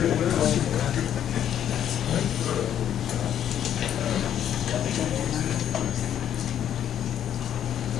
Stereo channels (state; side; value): quieter; right; 10.1 dB